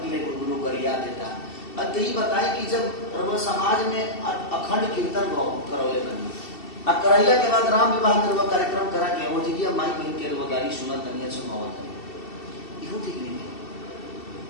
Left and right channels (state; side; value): late; right; 2.7 ms